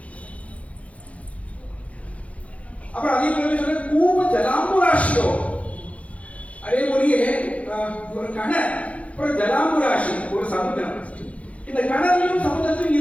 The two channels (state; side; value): late; right; 0.065 ms